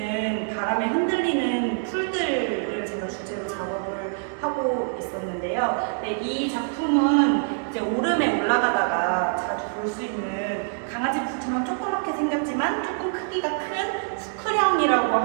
바람에 흔들리는 풀들을 제가 주제로 작업을 하고 있었는데요. 네, 이 작품은 이제 오름에 올라가다가 자주 볼 수 있는 강아지 풀처럼 조그맣게 생겼지만 조금 크기가 큰 수크령이라고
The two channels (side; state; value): left; silent; digital silence